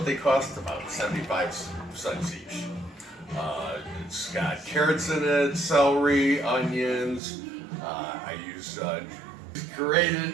they cost? About 75 cents each. It's got carrots in it, celery, onions. I use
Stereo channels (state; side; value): drops out; left; at 7.2 s